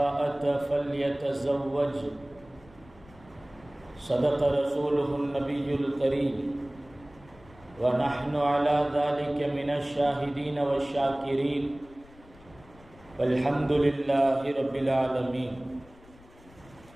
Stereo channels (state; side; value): noise; left; rumble, 24 dB below the sound